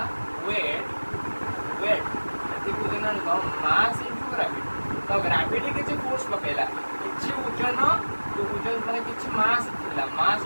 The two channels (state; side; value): inverted; both; correlation -1.00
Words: वेट एति को देना मास इनटू ग्रेविटी तो ग्रेविटी किछि फोर्स पकेला किछि वजन तो वजन माने किछि मास थिला मास